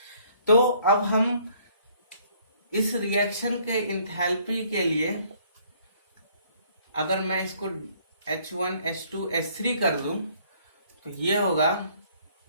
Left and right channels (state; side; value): inverted; both; correlation -0.62